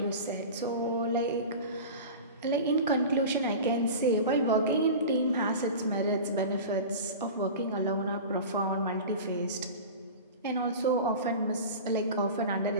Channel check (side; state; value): both; inverted; correlation -0.32